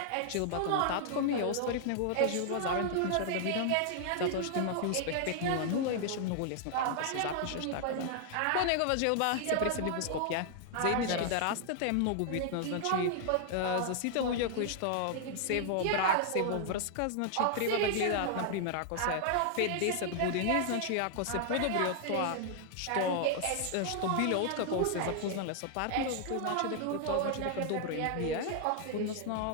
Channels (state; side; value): different; both; correlation 0.00